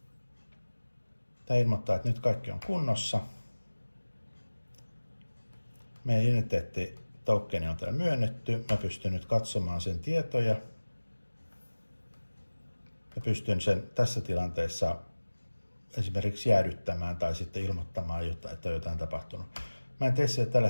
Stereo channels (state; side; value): inverted; both; correlation -1.00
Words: Tämä ilmoittaa, että nyt kaikki on kunnossa. Meidän identiteettitokeni on täällä myönnetty. Mä pystyn nyt katsomaan sen tietoja. Mä pystyn sen tässä tilanteessa esimerkiksi jäädyttämään tai sitten ilmoittamaan, että on jotain tapahtunut. Mä en tee siellä tällä